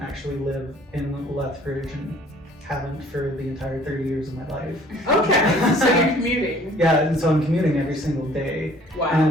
live in Lethbridge and haven't for the entire 30 years of my life. Okay, so you're commuting. Yeah, and so I'm commuting every single day. Wow.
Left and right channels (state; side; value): normal; both; correlation 0.55